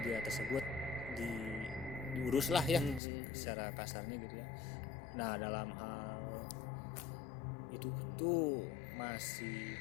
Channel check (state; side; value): drops out; right; at 3.0 s